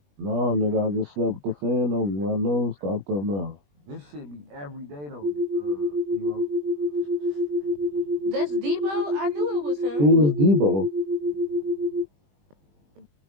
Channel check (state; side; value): late; left; 20 ms